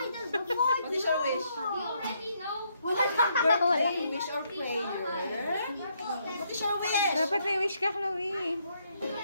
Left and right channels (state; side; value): inverted; both; correlation -0.74